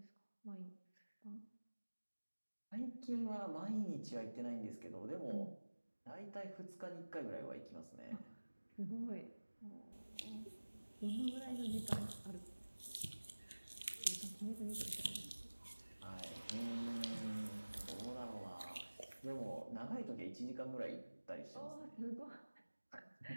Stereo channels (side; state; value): both; inverted; correlation -1.00